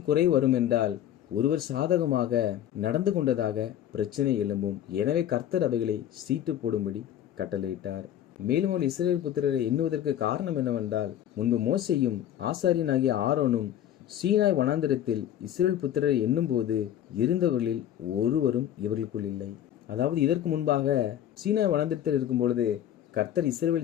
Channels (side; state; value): right; quieter; 11.1 dB